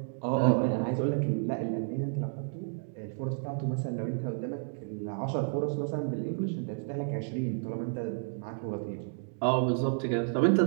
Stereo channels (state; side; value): silent; left; digital silence